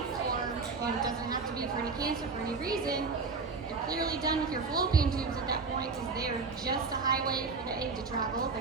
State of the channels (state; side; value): quieter; left; 4.5 dB